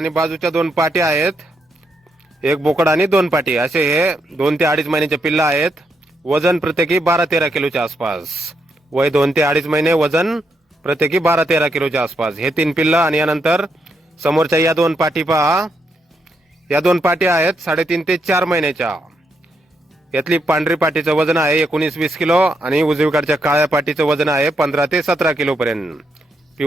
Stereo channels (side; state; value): both; normal; correlation 0.80